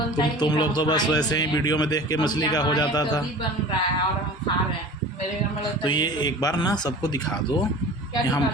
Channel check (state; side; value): normal; both; correlation 0.39